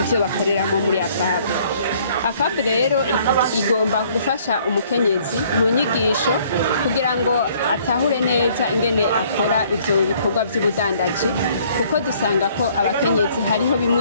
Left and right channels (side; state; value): both; inverted; correlation -0.60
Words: ivyo bakoreramo muri AFAB. AFAB rero igomba gufasha umukenyezi mu nyigisho kugira ngo atahure neza ingene akora ivyo bikorwa by'ubudandaji, kuko dusanga ko abakenyezi hariho